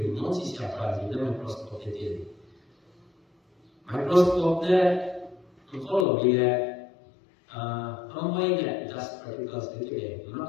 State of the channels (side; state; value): right; drops out; at 6.1 s